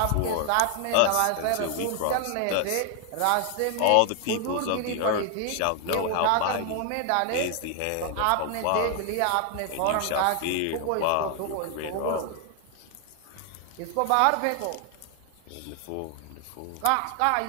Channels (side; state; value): both; different; correlation 0.00